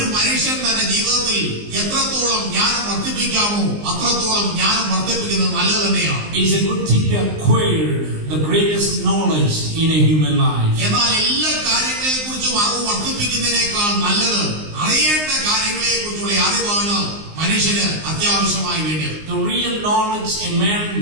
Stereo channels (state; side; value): late; left; 19 ms